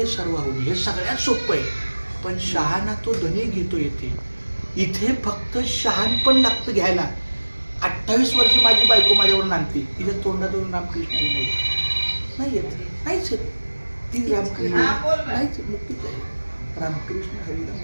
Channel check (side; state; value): both; inverted; correlation -1.00